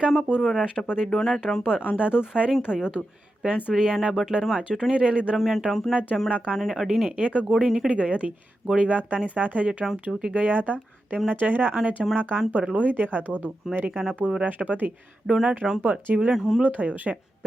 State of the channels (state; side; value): normal; both; correlation 0.90